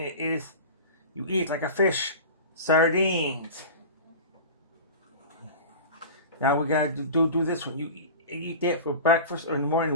is, you eat like a fish. Sardines. Now we gotta do this one. You eat that for breakfast or in the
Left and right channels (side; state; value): both; inverted; correlation -0.33